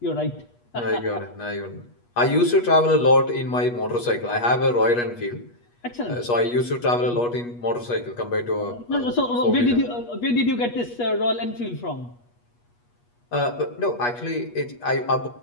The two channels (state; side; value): late; right; 8.3 ms